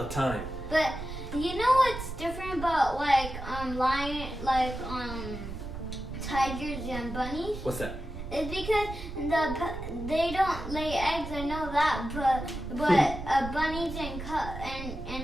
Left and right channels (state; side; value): noise; right; rumble, 9 dB below the sound